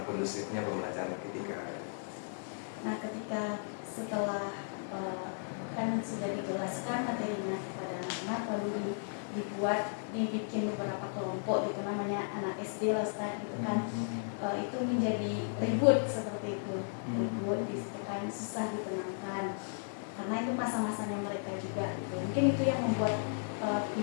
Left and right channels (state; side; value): silent; right; digital silence